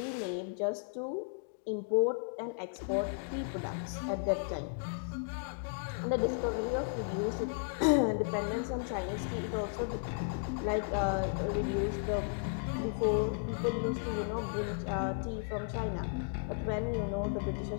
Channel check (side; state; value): right; silent; digital silence